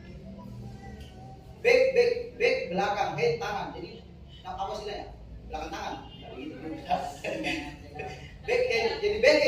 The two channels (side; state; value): both; identical; correlation 1.00